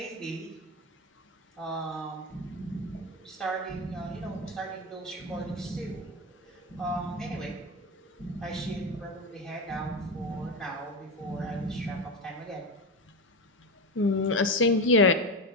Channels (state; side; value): normal; both; correlation 0.18